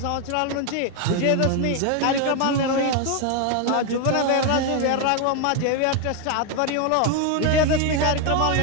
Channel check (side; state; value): both; different; correlation 0.01